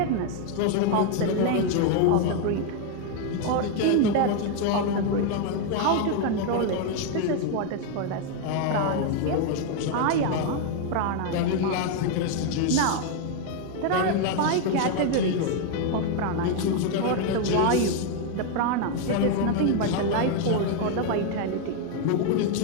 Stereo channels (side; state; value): both; different; correlation 0.01